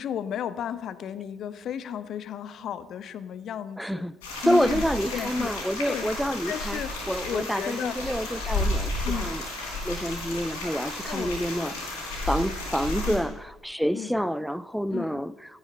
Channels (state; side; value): normal; both; correlation 0.83